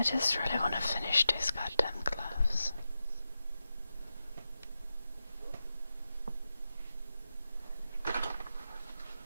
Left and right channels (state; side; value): inverted; both; correlation -0.90